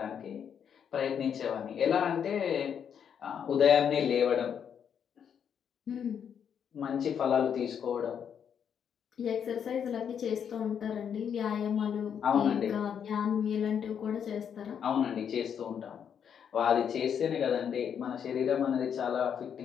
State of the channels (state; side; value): quieter; right; 8.0 dB